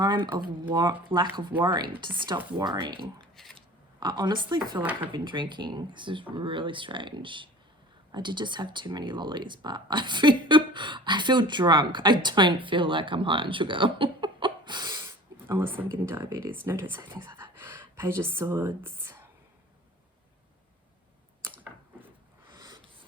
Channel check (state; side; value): normal; both; correlation 0.43